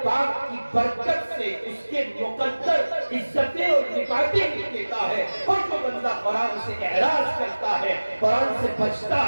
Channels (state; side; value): inverted; both; correlation -1.00